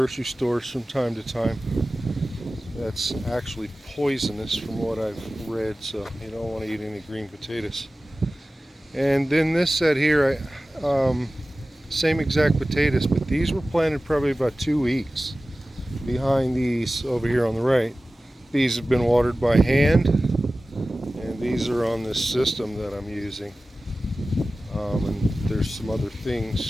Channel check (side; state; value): both; normal; correlation 0.96